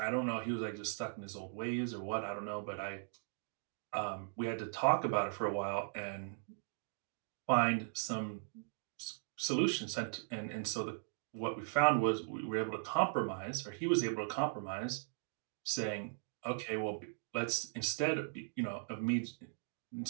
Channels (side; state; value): left; silent; digital silence